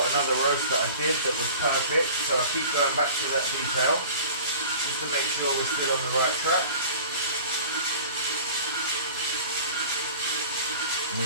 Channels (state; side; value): inverted; both; correlation -0.42